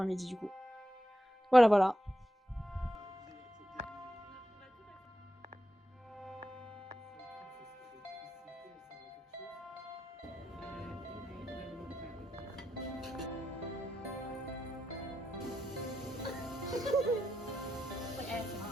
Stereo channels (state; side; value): normal; both; correlation 0.86